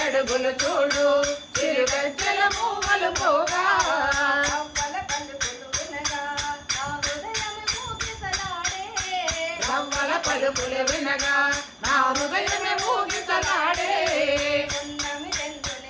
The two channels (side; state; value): both; identical; correlation 1.00